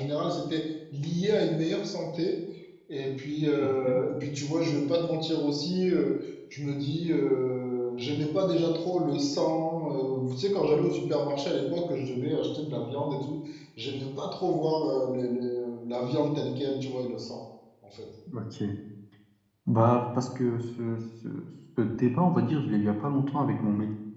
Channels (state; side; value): identical; both; correlation 1.00